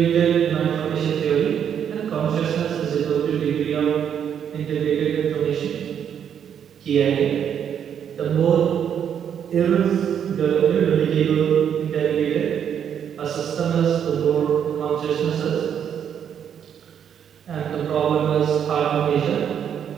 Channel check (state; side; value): quieter; left; 8.6 dB